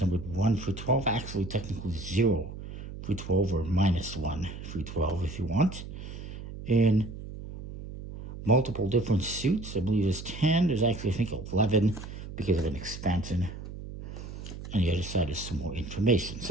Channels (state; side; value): noise; right; hum, 11 dB below the sound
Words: numbered 1 through 12, actually technically 0 through 12, or -1 through 12 if you want. In multiple different suits, I believe there's 10, there's actually I think 11 because of an expansion. On the other side is some more information.